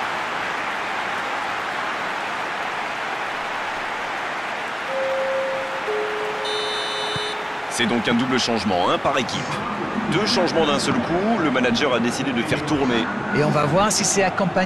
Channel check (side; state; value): both; identical; correlation 1.00